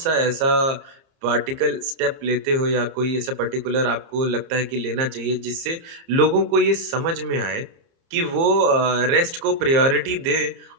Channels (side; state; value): left; late; 30 ms